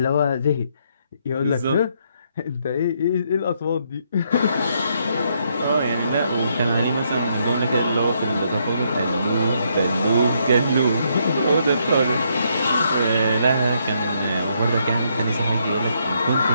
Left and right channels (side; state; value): both; inverted; correlation -0.74